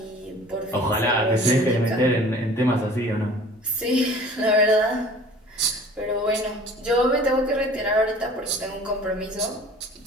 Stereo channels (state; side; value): normal; both; correlation 0.46